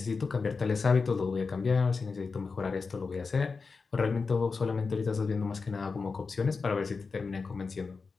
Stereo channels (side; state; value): right; quieter; 4.6 dB